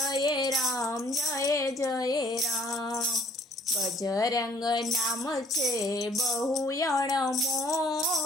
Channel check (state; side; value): normal; both; correlation 0.59